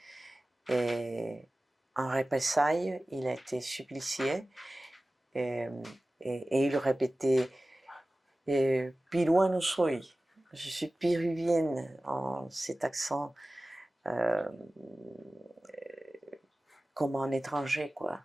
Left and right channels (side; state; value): both; normal; correlation 0.97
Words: Et en représailles, il a été supplicié et, et il répétait Piruano soy, je suis péruvienne, en cet accent comme un étranger, quoi.